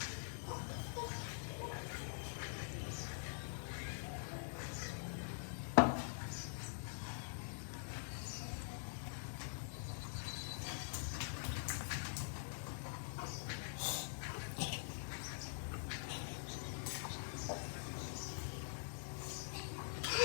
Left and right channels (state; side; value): silent; right; digital silence